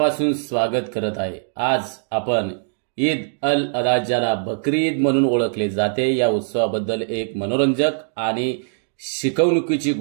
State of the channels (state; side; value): silent; left; digital silence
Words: स्वागत करत आहे. आज आपण ईद अल अधा ज्याला बकरी ईद म्हणून ओळखले जाते या उत्सवाबद्दल एक मनोरंजक आणि शिकवणुकीची